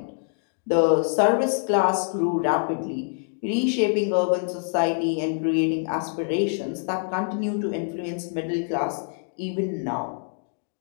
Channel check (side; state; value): right; silent; 62 dB below the other